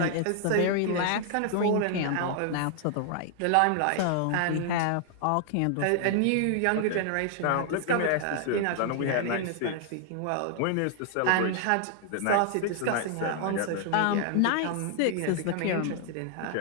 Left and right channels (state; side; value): different; both; correlation 0.00